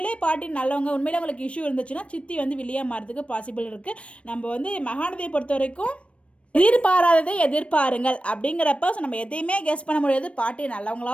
பாட்டி நல்லவங்க, உண்மையிலே அவங்களுக்கு இஷ்யூ இருந்துச்சுன்னா சித்தி வில்லியாக மாறதுக்கு பாசிபிள் இருக்குது. நம்ம மகாநதியை பொறுத்த வரைக்கும் எதிர்பாராததை எதிர்பாருங்கள் அப்படிங்கிறப்ப ஸோ நம்ம எதையுமே கெஸ் பண்ண முடியாது. பாட்டி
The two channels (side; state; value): right; late; 0.061 ms